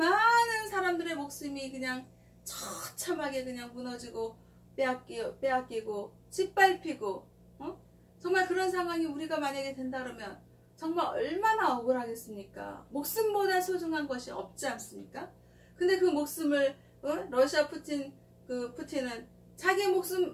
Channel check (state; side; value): identical; both; correlation 1.00